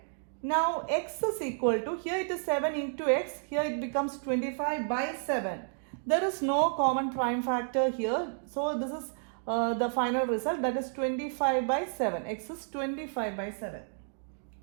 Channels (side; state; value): left; silent; digital silence